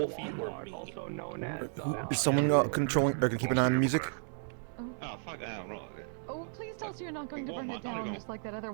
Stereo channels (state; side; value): silent; left; digital silence